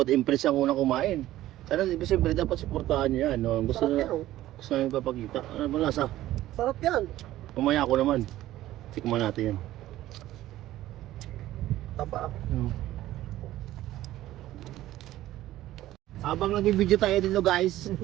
Impress ang unang kumain. Sana siyempre dapat suportahan niyo yan. No? Gusto Sarap na yan oh. gusto namin papakita. Ano ba lasa? Sarap yan. Pumaya ko naman. Tikman natin yan. Taba. Habang nag-video tayo dito guys,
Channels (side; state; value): left; quieter; 14.8 dB